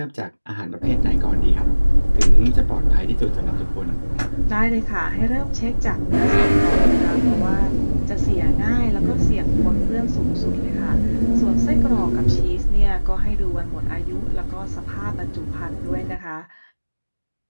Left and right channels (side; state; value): both; inverted; correlation -1.00